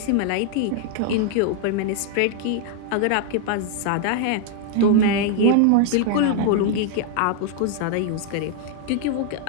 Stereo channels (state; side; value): different; both; correlation 0.00